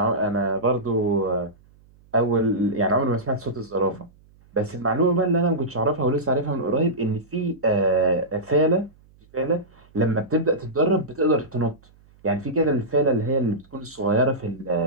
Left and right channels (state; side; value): noise; right; hum, 29 dB below the sound